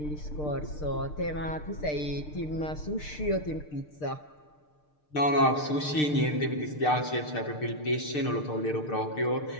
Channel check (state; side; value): late; right; 6.6 ms